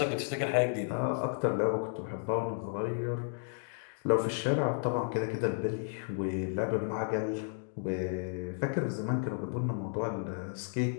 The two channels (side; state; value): right; silent; digital silence